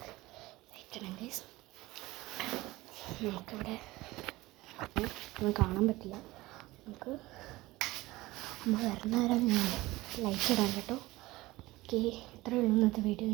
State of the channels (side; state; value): left; quieter; 19.4 dB